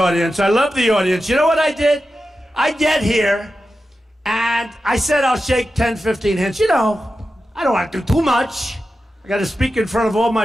I love the audience. You know what I did? I get here, and I said I'll shake 10, 15 hands. You know, I don't want to do too much. I got to speak in front of all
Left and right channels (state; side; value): normal; both; correlation 0.92